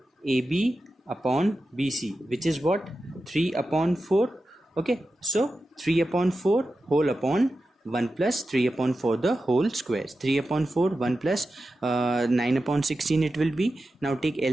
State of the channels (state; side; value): normal; both; correlation 0.92